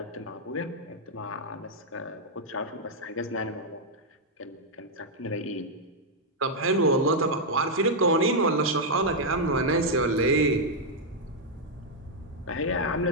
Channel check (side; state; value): both; normal; correlation -0.02